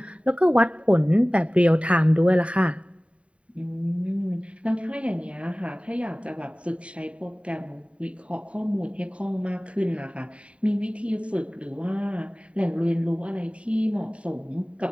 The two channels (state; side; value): late; left; 0.063 ms